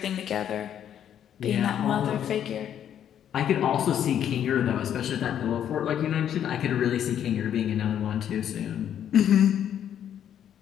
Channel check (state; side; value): quieter; right; 9.8 dB